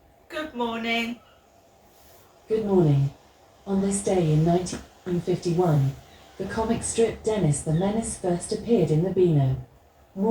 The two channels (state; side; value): identical; both; correlation 1.00